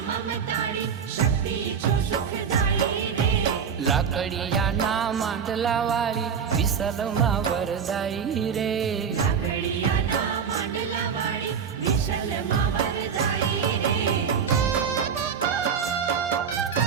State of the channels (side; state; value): left; quieter; 6.9 dB